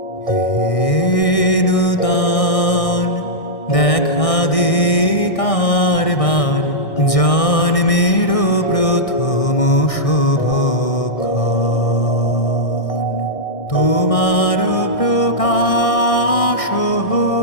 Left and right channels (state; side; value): late; right; 1.6 ms